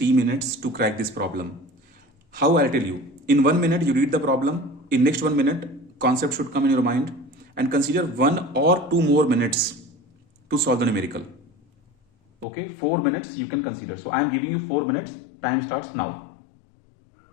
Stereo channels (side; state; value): right; drops out; at 12.5 s